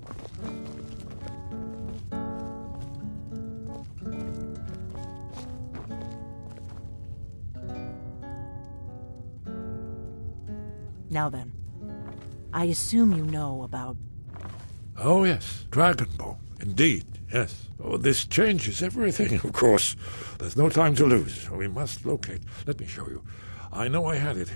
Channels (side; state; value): both; inverted; correlation -1.00